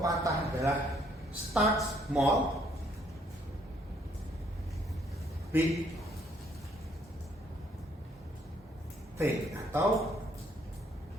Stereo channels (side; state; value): both; normal; correlation 0.67